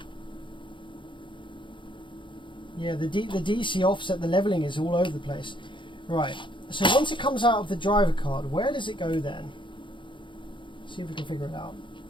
Yeah, the DC offset, the leveling is all over the place. Right, so once it comes out of the driver card, where does it go then? See if we can figure it out.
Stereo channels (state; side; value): late; right; 0.24 ms